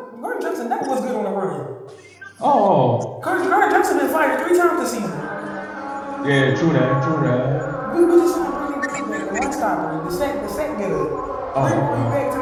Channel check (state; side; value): identical; both; correlation 1.00